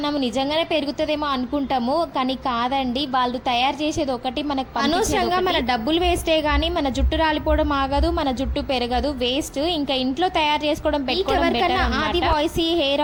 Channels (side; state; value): both; identical; correlation 1.00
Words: నిజంగానే పెరుగుతుందేమో అనుకుంటాము, కానీ కాదండి. వాళ్ళు తయారు చేసేది ఒకటి, మనకు అనవసరంగా మన డబ్బులు వేస్టే గానీ మన జుట్టు రాలిపోవడం ఆగదు, మన జుట్టు పెరగదు, వేస్ట్. ఇంకా ఇంట్లో తయారు చేసుకోవడం పెట్టుకోవడం. ఆది వాయిస్